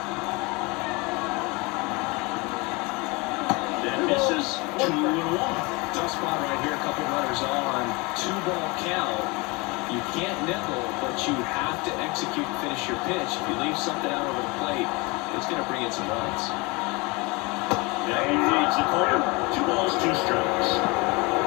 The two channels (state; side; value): quieter; right; 26.4 dB